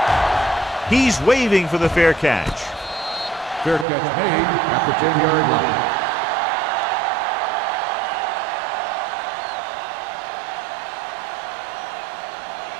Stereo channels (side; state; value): left; drops out; at 3.9 s